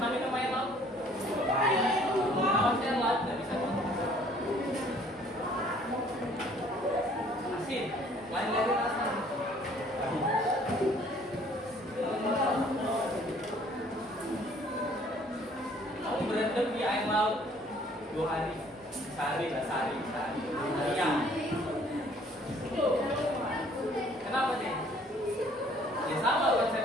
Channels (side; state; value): both; normal; correlation 0.58